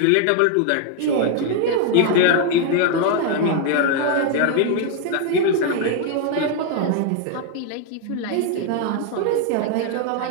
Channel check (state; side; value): different; both; correlation 0.00